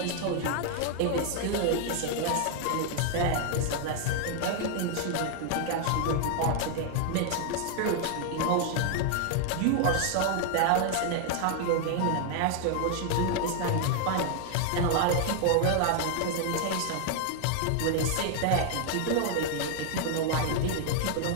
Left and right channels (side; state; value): both; different; correlation 0.00